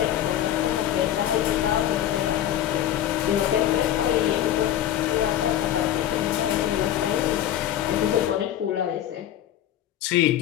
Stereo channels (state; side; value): quieter; right; 11.6 dB